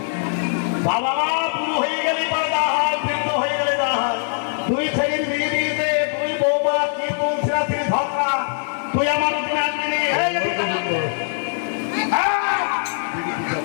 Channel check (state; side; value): silent; right; digital silence